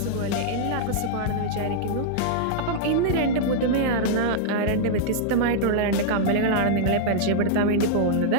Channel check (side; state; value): both; different; correlation -0.02